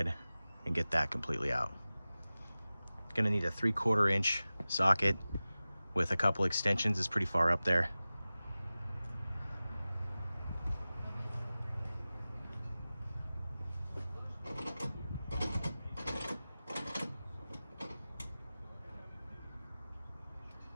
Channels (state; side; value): inverted; both; correlation -0.97